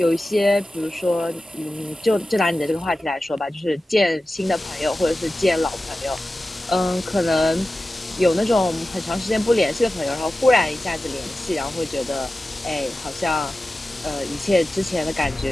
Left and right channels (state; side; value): normal; both; correlation 0.94